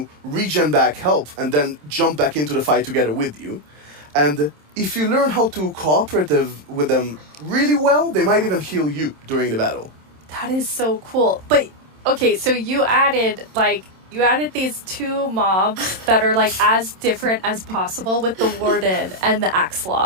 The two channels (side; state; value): left; late; 27 ms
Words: regen back health and then jump back into the fight together with you. And if you learn how to cooperate with them really well, they might even heal you during the battle. That is so cool. But okay, so you added these 2 mobs that are like as different as possible with the Warden and the